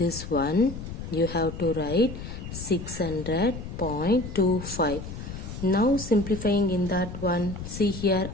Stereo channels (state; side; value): noise; left; rumble, 9 dB below the sound